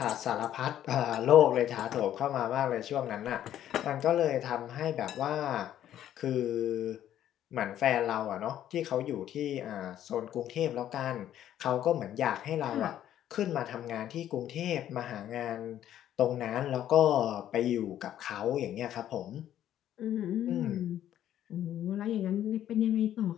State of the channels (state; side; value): quieter; right; 11.4 dB